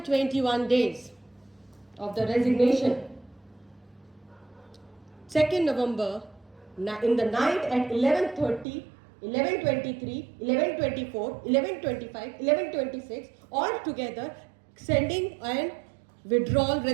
days of the resignation, 2nd November, in the night at 11:30, 11:23, 11:24, 11:25, 11:26, all together sending an withdrawal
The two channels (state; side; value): drops out; left; at 8.7 s